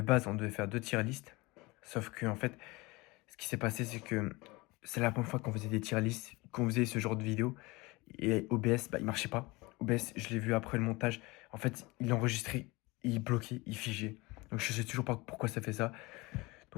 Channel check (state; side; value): quieter; right; 23.4 dB